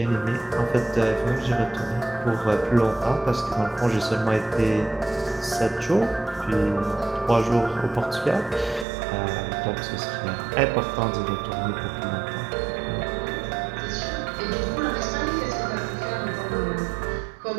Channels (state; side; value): drops out; left; at 8.8 s